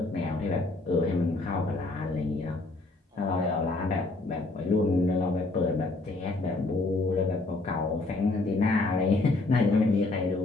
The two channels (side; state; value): right; quieter; 3.2 dB